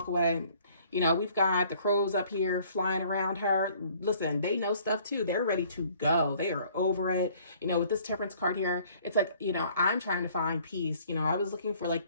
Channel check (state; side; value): inverted; both; correlation -0.57